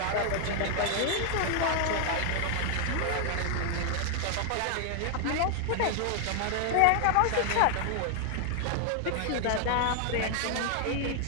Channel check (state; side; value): different; both; correlation 0.00